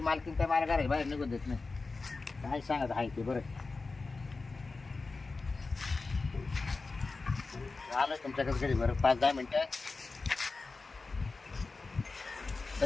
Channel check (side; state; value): right; quieter; 3.9 dB